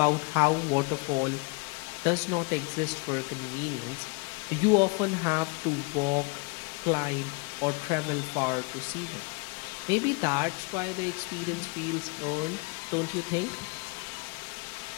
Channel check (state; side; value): quieter; right; 31.3 dB